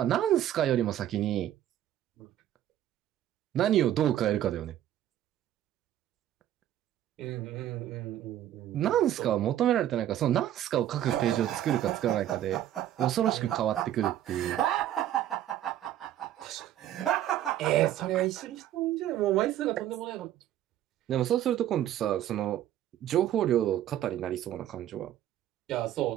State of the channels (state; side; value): quieter; left; 12.0 dB